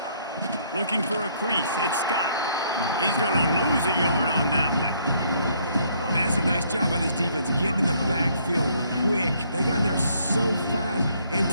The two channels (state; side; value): inverted; both; correlation -0.66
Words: Looking for a crease. It's Scott. He's going to lose a yard on that one. That's a nice job by this defense, getting in the backfield quick. They got in there so fast,